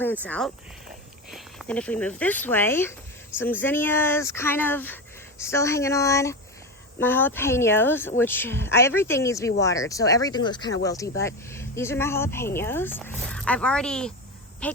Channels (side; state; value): both; normal; correlation 0.19